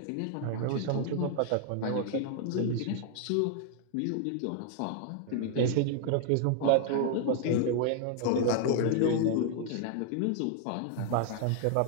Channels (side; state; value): both; different; correlation 0.00